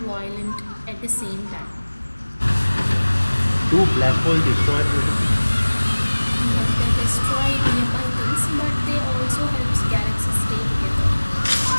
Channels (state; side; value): inverted; both; correlation -1.00